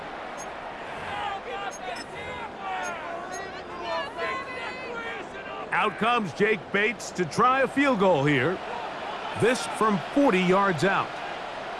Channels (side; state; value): both; identical; correlation 1.00